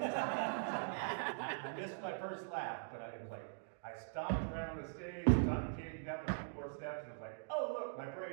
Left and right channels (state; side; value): silent; left; digital silence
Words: missed my first laugh, but it was like, I stomped around the stage, Johnny came down the 2 more steps, and was like, oh look, my